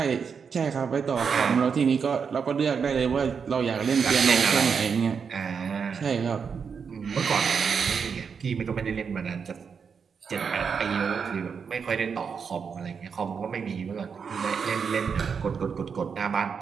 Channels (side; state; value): left; quieter; 6.2 dB